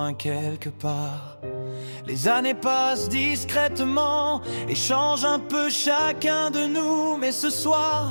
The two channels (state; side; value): inverted; both; correlation -1.00